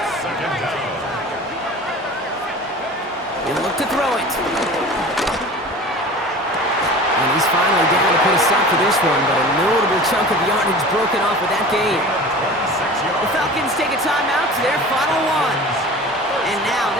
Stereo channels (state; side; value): normal; both; correlation 0.39